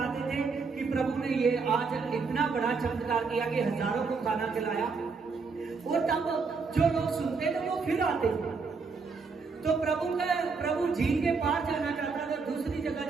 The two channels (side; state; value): left; quieter; 4.7 dB